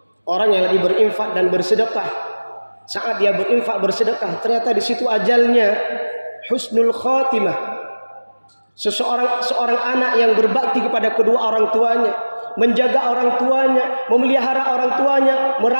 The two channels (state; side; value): inverted; both; correlation -1.00